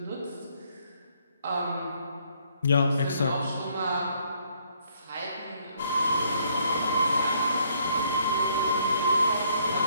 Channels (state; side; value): inverted; both; correlation -0.67